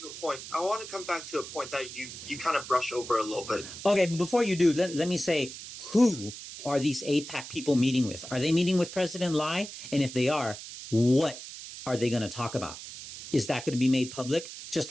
the point. I want to come back to a point that you kind of brush over a little bit. Okay, but before you do, let me say, who are these AIPAC people meeting with? Are they meeting with President Lai? And if they are, what are they going to talk about? Is that going to be made public?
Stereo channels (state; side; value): noise; right; hiss, 12 dB below the sound